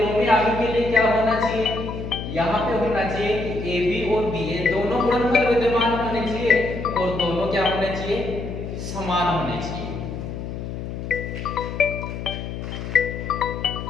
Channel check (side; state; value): left; noise; hum, 7 dB below the sound